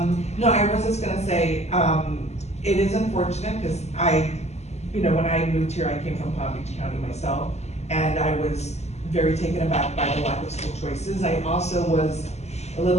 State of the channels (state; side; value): late; right; 0.32 ms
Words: No, I was just gonna say, it is unfortunate because when I moved here, I came from Palm Beach County myself, and I was very taken aback by the lack of school choices. I also was a